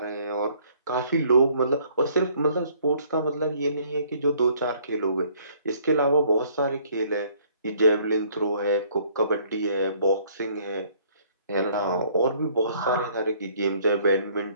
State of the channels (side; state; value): both; inverted; correlation -0.61